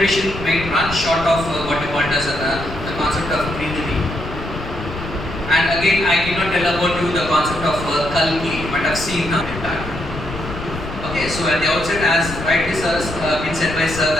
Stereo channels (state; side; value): noise; left; rumble, 9 dB below the sound